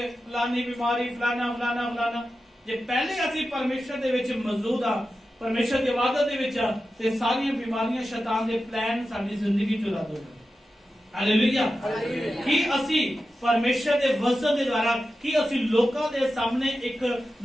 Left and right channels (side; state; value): both; normal; correlation 0.92